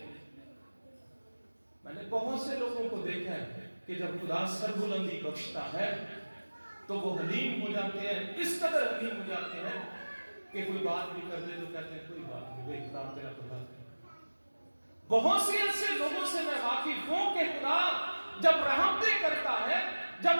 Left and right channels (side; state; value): both; inverted; correlation -1.00